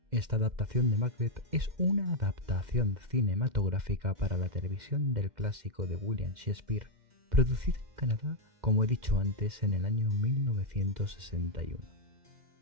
Esta adaptación de Macbeth es una adaptación cinematográfica para la televisión del clásico de William Shakespeare, producida en Canadá, como he dicho antes, en el año 1961.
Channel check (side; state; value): left; late; 2.1 ms